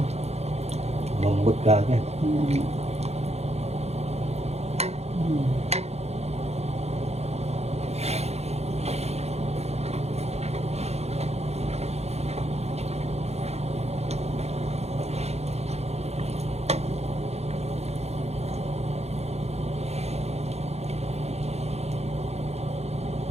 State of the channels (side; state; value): left; late; 0.31 ms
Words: mambot ka agad.